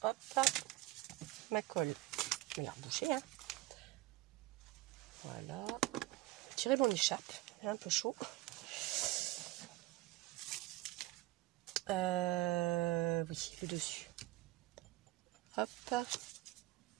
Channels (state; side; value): quieter; left; 17.6 dB